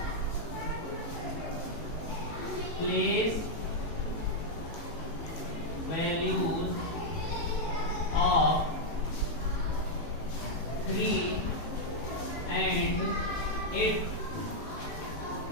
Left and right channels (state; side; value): late; right; 18 ms